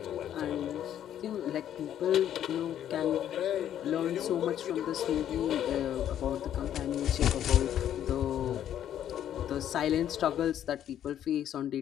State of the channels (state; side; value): quieter; right; 10.6 dB